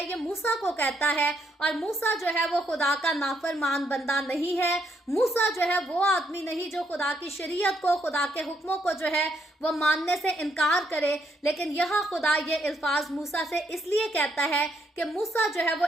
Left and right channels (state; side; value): normal; both; correlation 0.74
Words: ये मूसा को कहता है, और मूसा जो है वो खुदा का नाफरमान बंदा नहीं है। मूसा जो है वो आदमी नहीं जो खुदा की शरीयत को, खुदा के हुक्मों को जो है वो मानने से इनकार करे। लेकिन यहाँ खुदा ये अल्फाज मूसा से इसलिए कहता है कि मूसा जो है वो